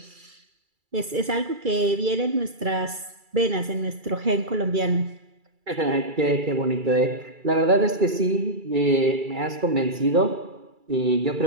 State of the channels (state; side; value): late; left; 2.3 ms